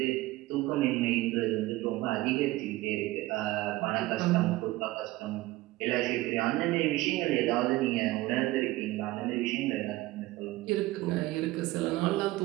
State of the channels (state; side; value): quieter; left; 18.2 dB